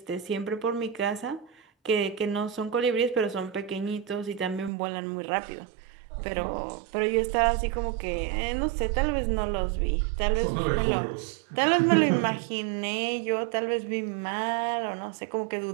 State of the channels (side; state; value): left; drops out; at 4.7 s